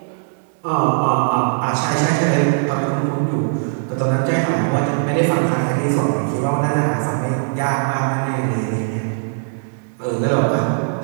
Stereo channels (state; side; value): silent; left; digital silence